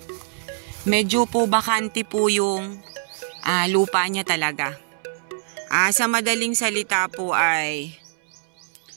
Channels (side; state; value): left; silent; 63 dB below the other